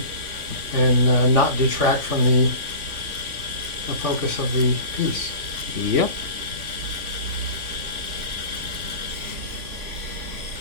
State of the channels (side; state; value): left; late; 3.5 ms